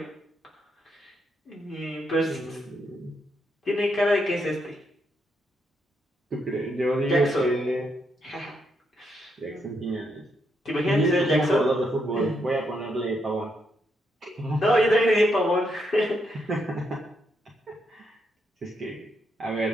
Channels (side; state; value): both; normal; correlation 0.78